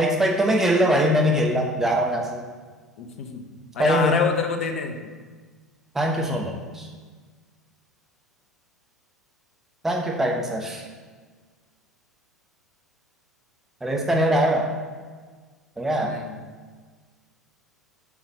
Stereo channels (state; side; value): normal; both; correlation 0.55